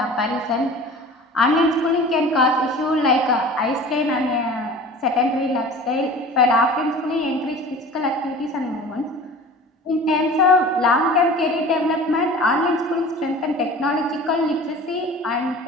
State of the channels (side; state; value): both; normal; correlation 0.40